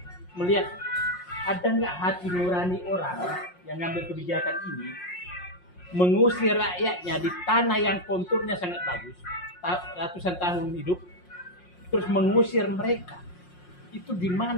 melihat ada nggak hati nurani orang yang ngambil kebijakan ini mengusir rakyatnya di tanah yang konturnya sangat bagus, ratusan tahun hidup, terus mengusir mereka. Itu di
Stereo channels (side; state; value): right; late; 5.6 ms